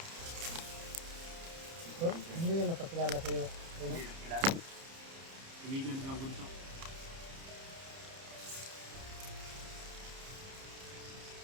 Hindi yan napakilala sa'yo. Hindi na kilala. Ibigan lang bunso.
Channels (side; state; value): left; late; 30 ms